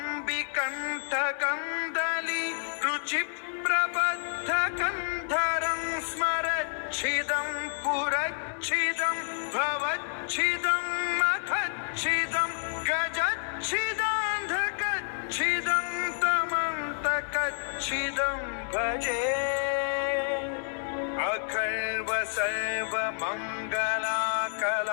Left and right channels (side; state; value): right; silent; digital silence